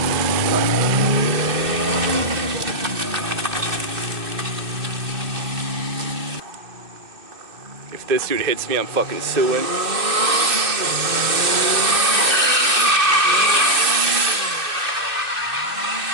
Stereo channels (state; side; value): late; left; 2.6 ms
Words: If this dude hits me, I'm fucking suing.